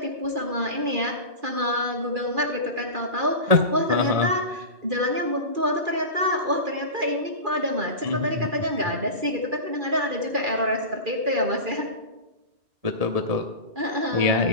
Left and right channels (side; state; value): left; late; 2.4 ms